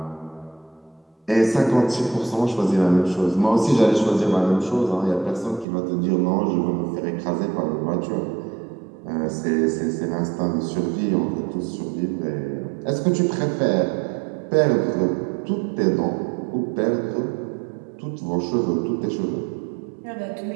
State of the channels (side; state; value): left; drops out; at 5.7 s